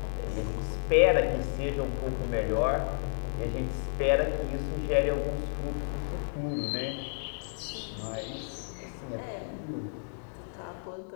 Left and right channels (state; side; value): silent; right; digital silence